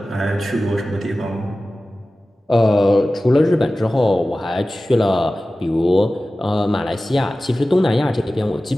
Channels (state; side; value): normal; both; correlation 0.96